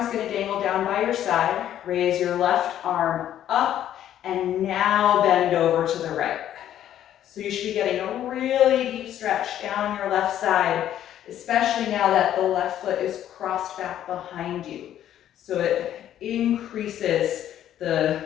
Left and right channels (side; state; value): right; quieter; 11.2 dB